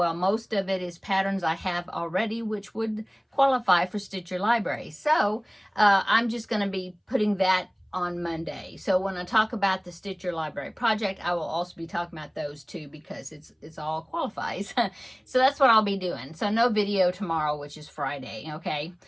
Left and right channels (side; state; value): both; identical; correlation 1.00